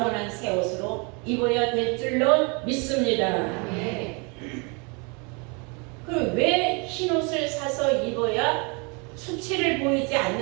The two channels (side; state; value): left; quieter; 32.2 dB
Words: 새 옷으로 입어야 될 줄로 믿습니다. 그럼 왜 흰옷을 사서 입어야 수치를 보이지